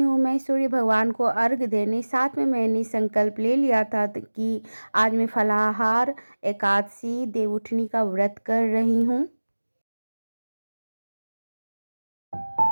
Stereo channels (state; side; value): inverted; both; correlation -1.00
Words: हूँ मैं सूर्य भगवान को अर्घ देने। साथ में मैंने संकल्प ले लिया था कि आज मैं फलाहार एकादशी देवउठनी का व्रत कर रही हूँ।